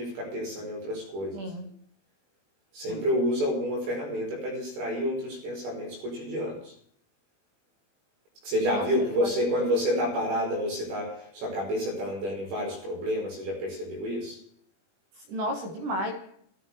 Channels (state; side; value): late; left; 21 ms